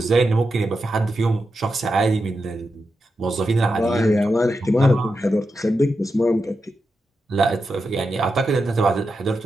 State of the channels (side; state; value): both; normal; correlation 0.88